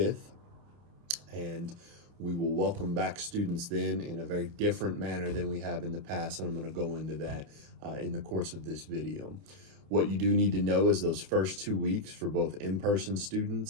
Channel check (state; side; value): late; left; 29 ms